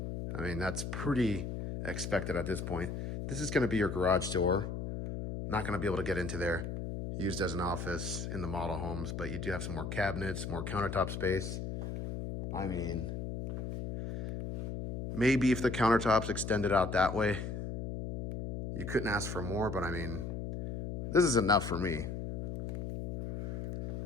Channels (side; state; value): left; noise; hum, 5 dB below the sound